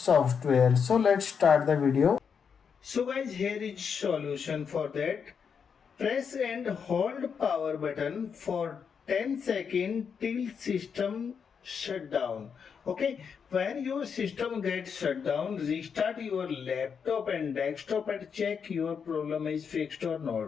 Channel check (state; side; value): quieter; right; 6.6 dB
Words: So let's start the video. So guys, here is solution for that. Press and hold power button for 10 seconds till system shut down. Okay, when your system gets shut down, restart your laptop and desktop and check your problem is fixed or